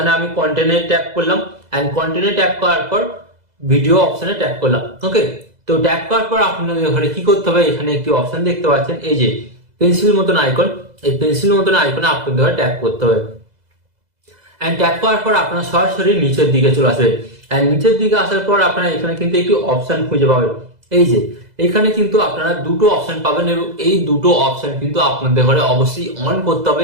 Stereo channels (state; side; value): late; left; 2.0 ms